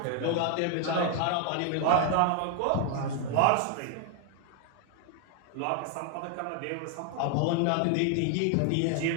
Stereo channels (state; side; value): different; both; correlation 0.00